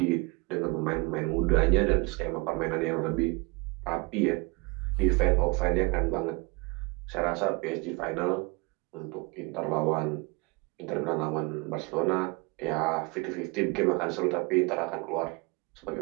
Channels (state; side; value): quieter; left; 27.3 dB